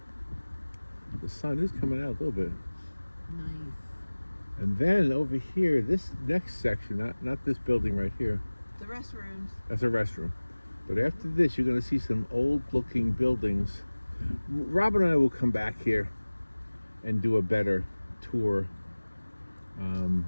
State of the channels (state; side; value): inverted; both; correlation -1.00